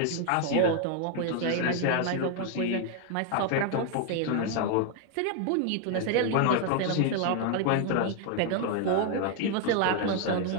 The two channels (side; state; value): both; different; correlation 0.00